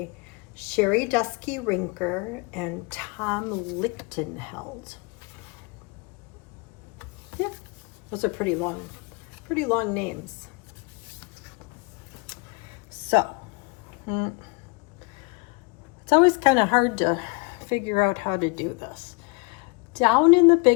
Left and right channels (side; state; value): right; quieter; 29.7 dB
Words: Sherry Dusky Rinker and Tom Lichtenheld. Yeah, those are pretty long names. So, it's always kind of hard to figure out how to do this. Down in the